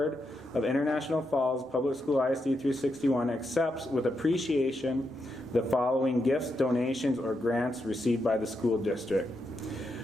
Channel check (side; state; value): both; normal; correlation 0.83